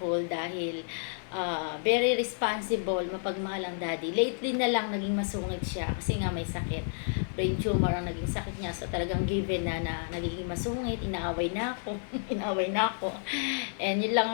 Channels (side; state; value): right; silent; 57 dB below the other